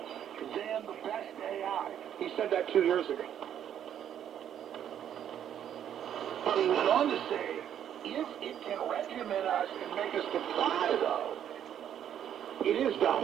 than the best AI. He said that 2 years ago. But he went on to say, if it can regiment us and make us comply, though, it is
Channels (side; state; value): left; quieter; 9.8 dB